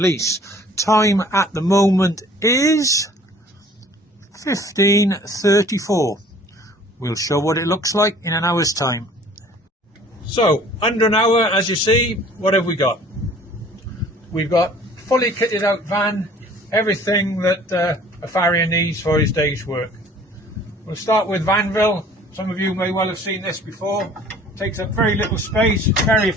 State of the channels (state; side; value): normal; both; correlation 0.52